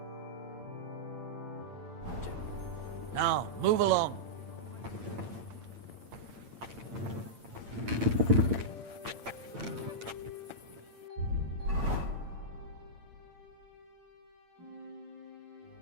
Now, move along.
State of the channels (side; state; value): left; late; 8.8 ms